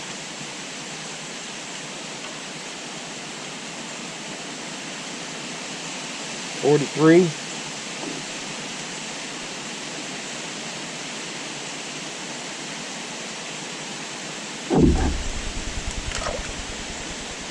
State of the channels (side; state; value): both; identical; correlation 1.00